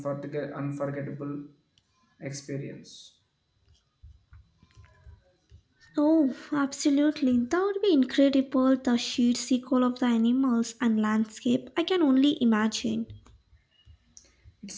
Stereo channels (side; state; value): both; identical; correlation 1.00